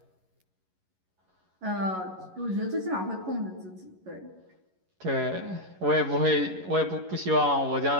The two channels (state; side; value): late; left; 11 ms